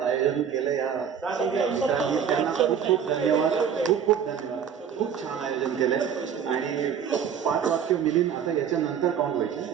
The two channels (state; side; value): quieter; left; 7.9 dB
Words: केलं या मित्रांनी, त्यांना खूप खूप धन्यवाद. खूप खूप धन्यवाद. खूप छान आयोजन केलंय. आणि 5 वाक्य मिलीन आता याच्यानंतर काउंट